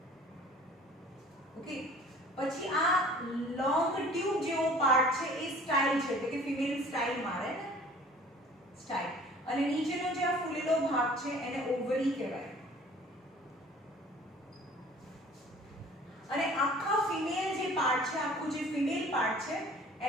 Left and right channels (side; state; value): both; normal; correlation 0.49